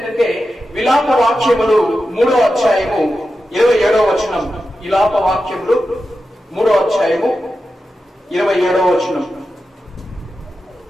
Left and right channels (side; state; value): both; normal; correlation 0.91